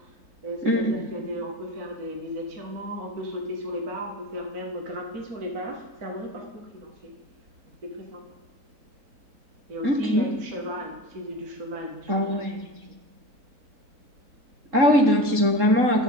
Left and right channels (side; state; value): left; late; 3.7 ms